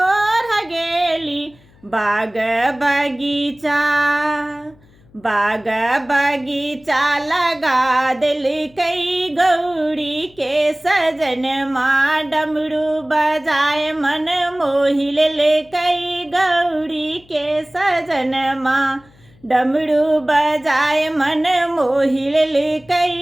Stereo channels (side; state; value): left; noise; hum, 29 dB below the sound